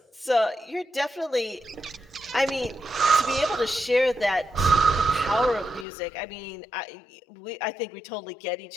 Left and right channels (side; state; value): right; drops out; at 5.9 s